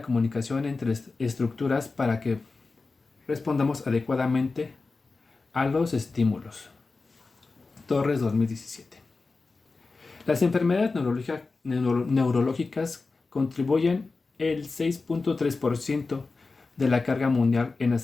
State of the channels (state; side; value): quieter; right; 3.9 dB